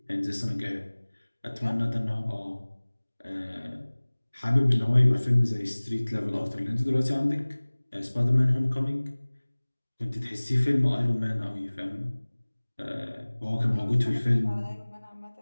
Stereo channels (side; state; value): both; inverted; correlation -1.00